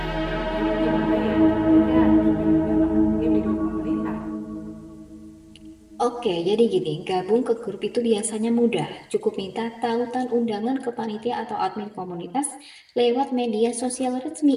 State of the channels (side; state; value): both; identical; correlation 1.00